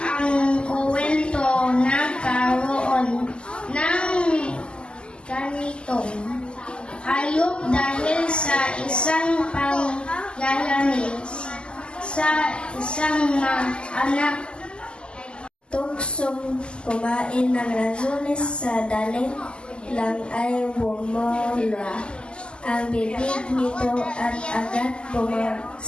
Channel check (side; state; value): right; late; 0.050 ms